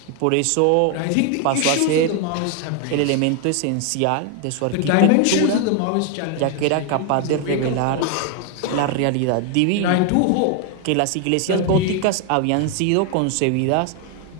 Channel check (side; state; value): both; different; correlation 0.01